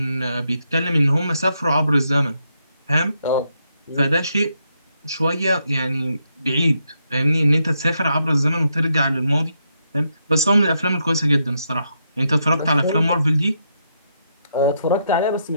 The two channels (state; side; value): inverted; both; correlation -0.79